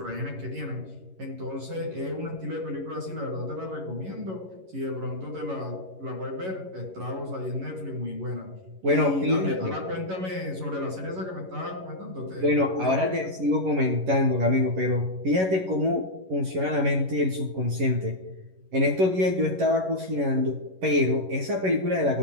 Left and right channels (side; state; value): left; late; 11 ms